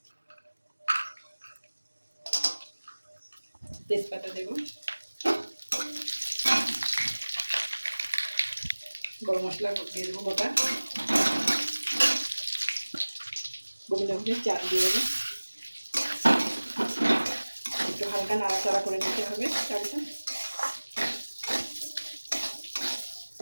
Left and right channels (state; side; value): inverted; both; correlation -1.00